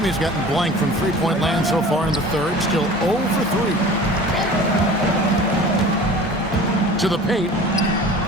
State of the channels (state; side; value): normal; both; correlation 0.41